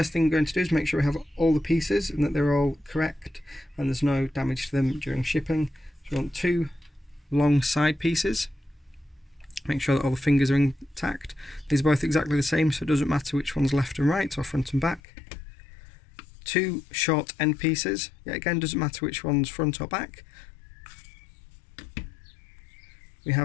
thing we're going to do is make sure we have all the pieces and that they're all correct and there's no damage to them during shipping. So we want 2 long side pieces. Make sure that all the fingers are intact. These are both exactly the same, so it doesn't matter which one's left and right or front and back. 2 short end pieces. Yet again, doesn't matter which one's front or back. We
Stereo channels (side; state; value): right; drops out; at 15.0 s